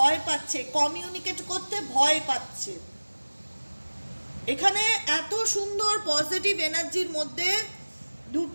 পাচ্ছে, কমিউনিকেট করতে ভয় পাচ্ছে। এখানে এত সুন্দর পজিটিভ এনার্জির মধ্যে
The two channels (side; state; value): both; inverted; correlation -1.00